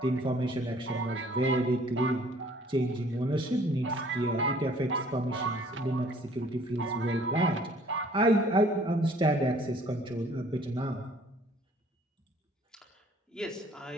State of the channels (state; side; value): normal; both; correlation 0.56